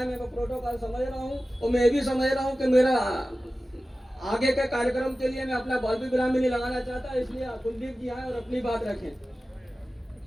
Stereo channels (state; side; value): normal; both; correlation 0.95